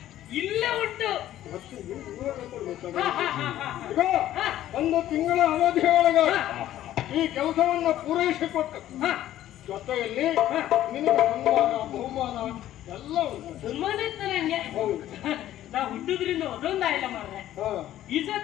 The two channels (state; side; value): quieter; right; 13.0 dB